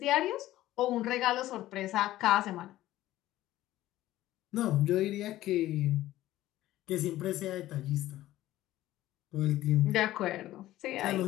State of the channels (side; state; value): right; quieter; 15.0 dB